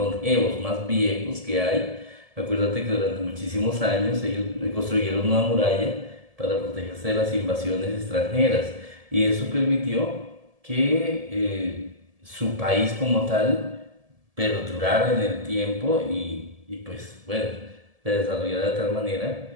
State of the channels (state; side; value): late; left; 1.7 ms